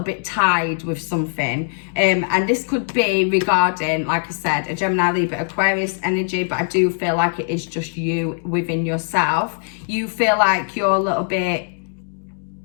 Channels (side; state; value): right; silent; digital silence